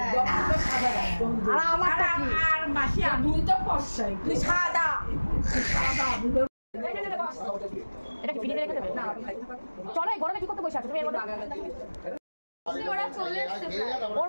আর আমারটা কি? আর মাসি তুই তো ফর্সাই, তুই সাদা সাদা। এটা কি ফ্রিজে রেখে দেবে? না চলো, এই গরমে কি করতে বসে আছো তুমি? এর মধ্যে ওরা চলে এসছে প্রায়। ওর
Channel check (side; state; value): both; inverted; correlation -1.00